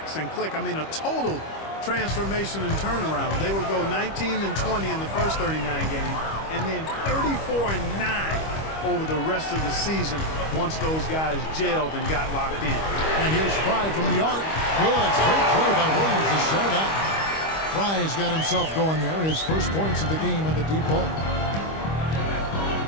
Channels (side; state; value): right; late; 25 ms